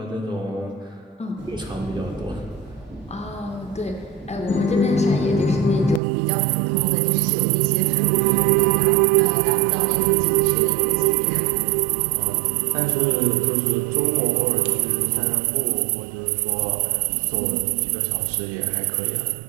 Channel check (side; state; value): left; drops out; at 6.0 s